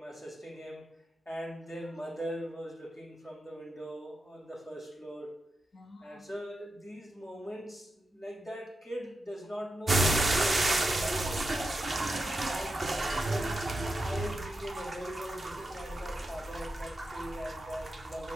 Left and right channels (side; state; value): both; normal; correlation 0.88